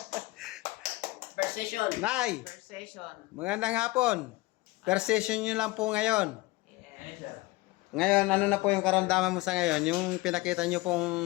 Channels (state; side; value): quieter; right; 21.4 dB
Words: Per session. Nay, Per session. magandang hapon. Per session nyo lang po ngayon. Yes. Ngayon, ano na po yung karamdaman mo sa ngayon? Yung pinakita nyo pong